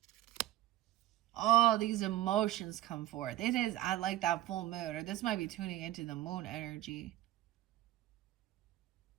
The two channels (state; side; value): quieter; left; 14.7 dB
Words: Oh, these emotions come forth. It is, I like that full moon. Or this might be tuning into the moon energy.